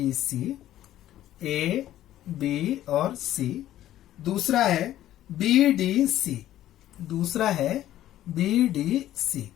सी, ए बी और सी। दूसरा है बी डी सी, दूसरा है बी डी सी।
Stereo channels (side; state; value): right; quieter; 13.2 dB